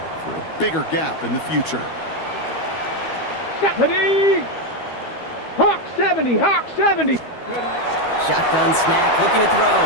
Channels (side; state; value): right; late; 12 ms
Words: for a bigger gap in the future. 70. Hawk 70, Hawk 70. Shotgun snap, looking to throw.